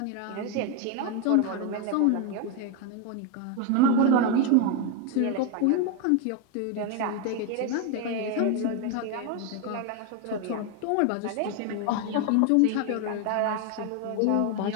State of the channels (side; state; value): both; different; correlation 0.01